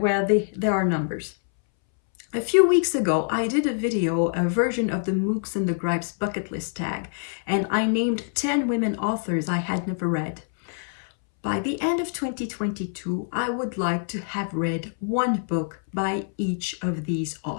there are numbers. A few weeks ago, I did a version of the Mooks and the Gripes bucket list tag, and I named 10 women authors I had never read. by the end of 2022, I would like to have read one book by each of these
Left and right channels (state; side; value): silent; right; 62 dB below the other